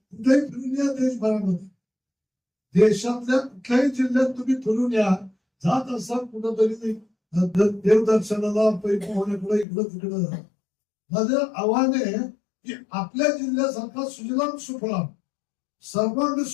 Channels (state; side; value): drops out; right; at 9.7 s